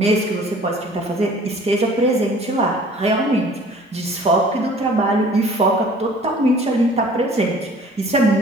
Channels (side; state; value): both; normal; correlation 0.50